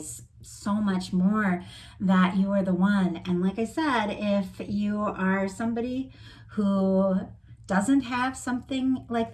so much more that you are the one. And like I said, if you are somebody who doesn't have something like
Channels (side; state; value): both; identical; correlation 1.00